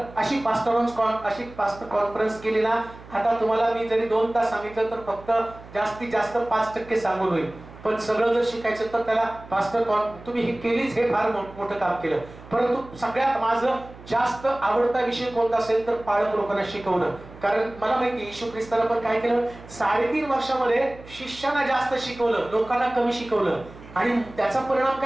अशी पास्टर कॉन्फरन्स केली ना, आता तुम्हाला मी जरी 2 तास सांगितलं तर फक्त जास्तीत जास्त 5% सांगून होईल. पण सगळं जर शिकायचं तर त्याला पास्टर तुम्ही हे केलीच, हे फार मोठं काम केलं. परंतु सगळ्यात माझं जास्त आवडता विषय कोणता असेल तर पालक लोकांना शिकवणं. कारण मला माहिती येशू ख्रिस्तानं पण काय केलं, 3.5 वर्षामध्ये शिष्याना जास्त शिकवलं, लोकांना कमी शिकवलं. आणि त्याचा परिणाम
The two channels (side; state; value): right; noise; hum, 19 dB below the sound